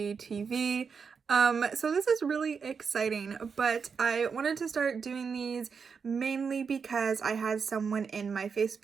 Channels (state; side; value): quieter; left; 5.9 dB